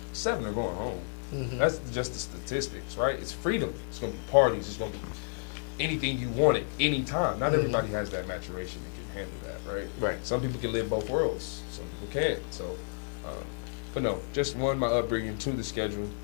7 are going home. Mm-hmm. That's just the statistics, right? It's freedom. It's gonna be parties. It's gonna be anything you want at any time. Not everybody has that maturation that can handle that, right? Right. Some people can live both worlds. Some people can't. So, but no, just one, my upbringing, 2, the schedule,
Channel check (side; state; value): right; silent; digital silence